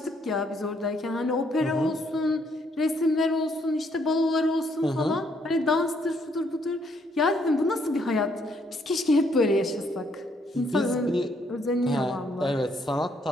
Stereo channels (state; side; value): normal; both; correlation 0.70